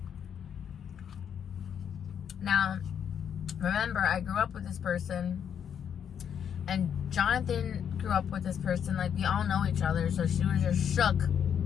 Now, remember, I grew up with this person, and Jonathan grew up with this person. Like, we all know each other, so she was just shook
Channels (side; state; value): right; quieter; 8.3 dB